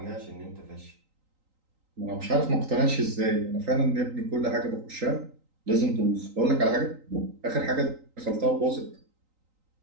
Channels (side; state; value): left; late; 3.9 ms